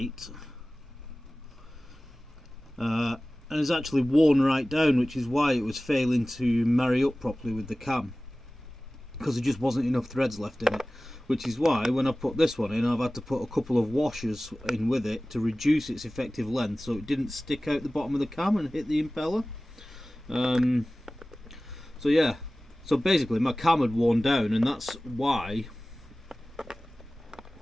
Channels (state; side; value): normal; both; correlation 0.97